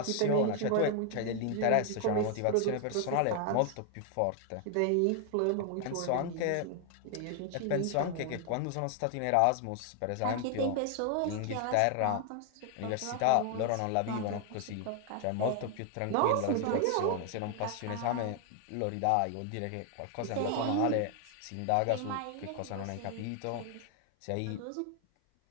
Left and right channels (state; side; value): different; both; correlation 0.00